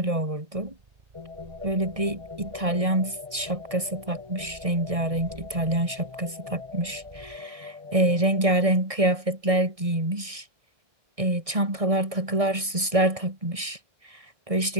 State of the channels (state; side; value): late; left; 1.6 ms